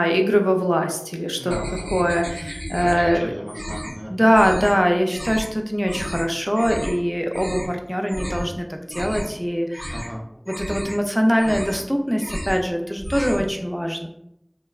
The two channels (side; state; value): both; identical; correlation 1.00